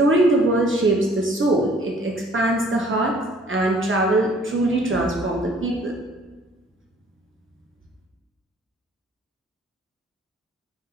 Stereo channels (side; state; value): both; normal; correlation 0.57